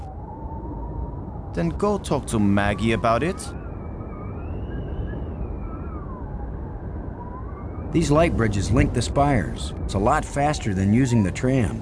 Then go talk to Maggie about it. These light bridges link the spires. It's a lot faster than using the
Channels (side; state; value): both; identical; correlation 1.00